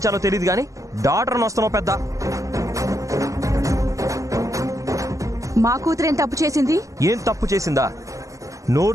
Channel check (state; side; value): late; left; 0.16 ms